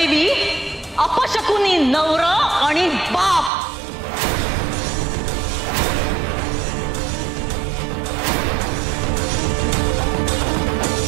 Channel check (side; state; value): left; drops out; at 3.5 s